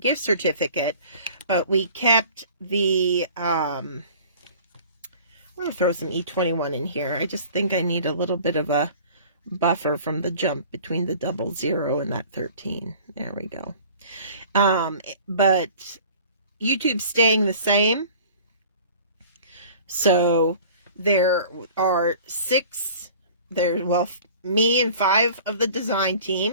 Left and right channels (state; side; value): inverted; both; correlation -0.46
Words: gift certificate. But we kept the, I'm going to throw some E21 in here. I just think I need a little bit of a buffer from the jump between the 00 and that 13. There we go. But YouTube's staying the same. So there are 6, me and 5 of the design team